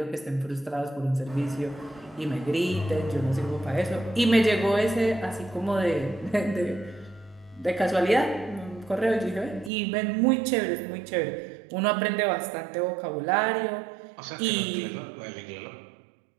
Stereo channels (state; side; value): drops out; left; at 9.7 s